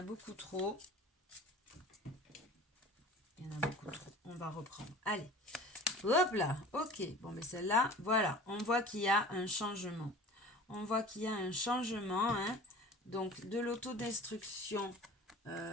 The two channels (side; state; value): both; normal; correlation 0.41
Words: beaucoup trop. Il y en a beaucoup trop. On va reprendre. Allez. Hop là. Ok. Bon, mais celle-là, voilà. On voit qu'il y a un changement. On voit qu'il y a un changement. Hein. Donc, de l'autodestruction,